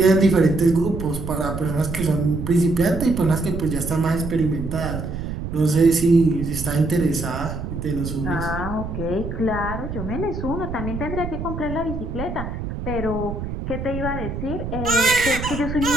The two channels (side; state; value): right; noise; rumble, 6 dB below the sound